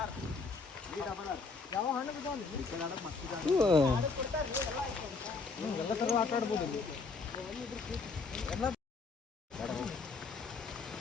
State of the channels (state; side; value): quieter; right; 4.4 dB